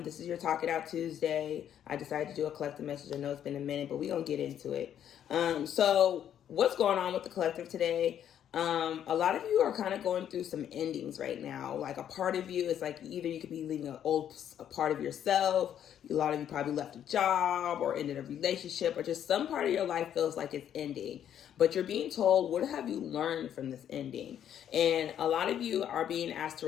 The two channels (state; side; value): quieter; right; 9.9 dB